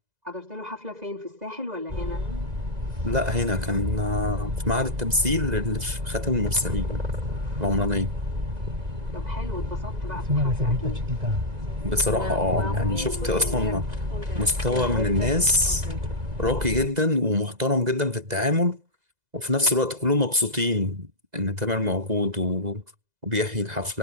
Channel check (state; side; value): late; left; 2.0 ms